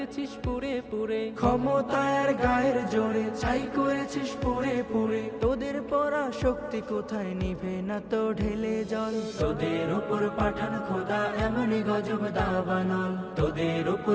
পুরে পুরে, ক্ষমতায়ের গায়ের জোরে ছাই করেছিস পুরে পুরে। তোদের পরা শক্তি কোথায় নিভে না তো ঢেলে জল। তোদের উপর পাঠান খোদা এমনি গজব দাবানল। তোদের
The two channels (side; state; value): both; identical; correlation 1.00